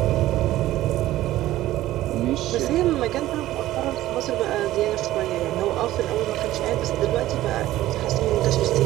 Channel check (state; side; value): quieter; left; 15.1 dB